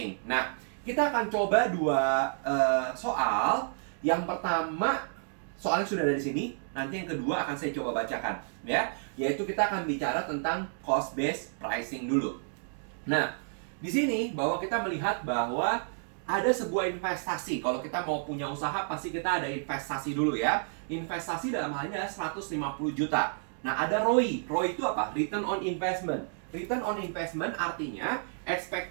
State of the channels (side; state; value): left; silent; digital silence